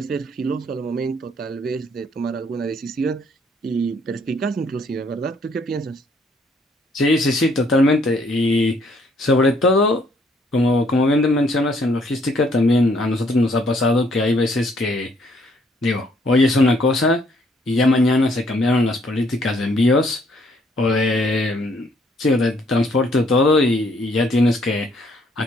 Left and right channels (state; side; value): normal; both; correlation 0.66